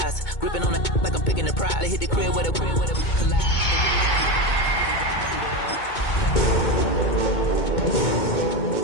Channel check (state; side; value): late; right; 2.2 ms